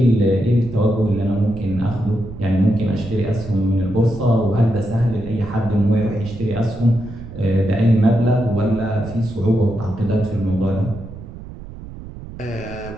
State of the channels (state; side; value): noise; right; rumble, 13 dB below the sound